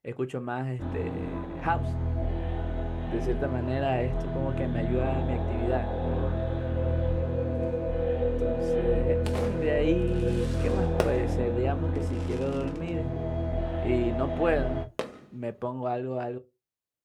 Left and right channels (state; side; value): identical; both; correlation 1.00